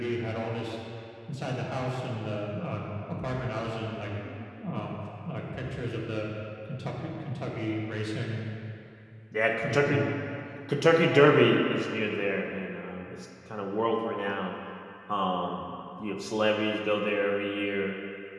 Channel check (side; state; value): both; identical; correlation 1.00